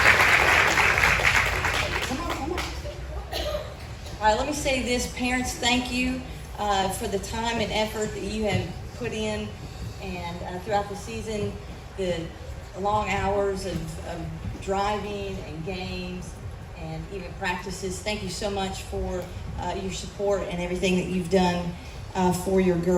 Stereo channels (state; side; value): identical; both; correlation 1.00